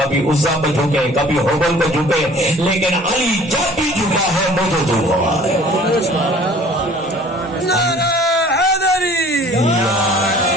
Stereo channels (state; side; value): normal; both; correlation 0.51